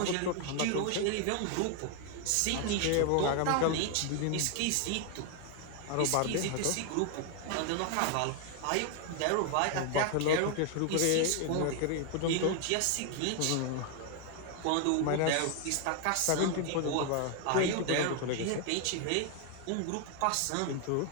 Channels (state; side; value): different; both; correlation 0.00